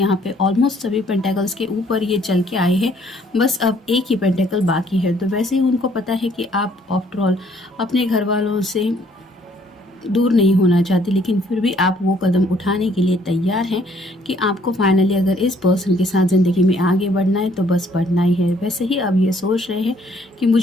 पे ऑलमोस्ट सभी पेंटेकल्स के ऊपर ये चल के आए हैं, बस अब एक ही पेंटेकल बाकी है। तो वैसे ही उनको पता है कि आप आफ्टर ऑल अपने घर वालों से दूर नहीं होना चाहती, लेकिन फिर भी आप वो कदम उठाने के लिए तैयार हैं कि आपको फाइनली अगर इस पर्सन के साथ ज़िंदगी में आगे बढ़ना है तो बस बढ़ना ही है। वैसे ही अब ये सोच रहे हैं कि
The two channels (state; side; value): normal; both; correlation 0.63